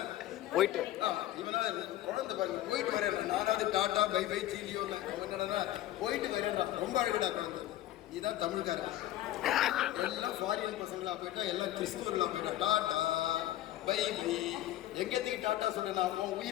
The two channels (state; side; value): quieter; right; 14.3 dB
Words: போயிட்டு இவனா குழந்தை பாருங்க. போயிட்டு வரேன் நானாவது டாட்டா பை பை சீலியோ என்னடா போயிட்டு வரேன்டா. ரொம்ப அழகடா குழந்தை. இதுதான் தமிழ்காரன். எல்லாம் ஃபாரின் பசங்களா போயிட்டா, எல்லாம் கிறிஸ்துவர்களா போயிட்டா டாட்டா பை பை. எங்கத்துக்கு டாட்டா சொல்றேன்? உன்